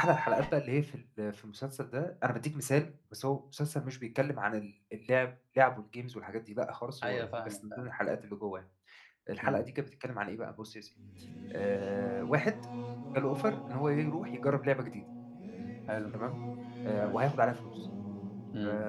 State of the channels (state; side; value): identical; both; correlation 1.00